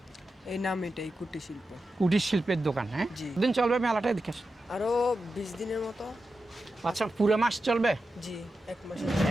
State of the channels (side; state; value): both; normal; correlation 0.90